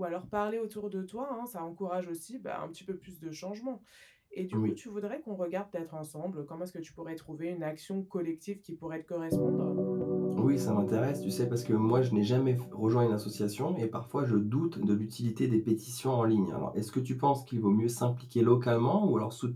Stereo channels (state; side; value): identical; both; correlation 1.00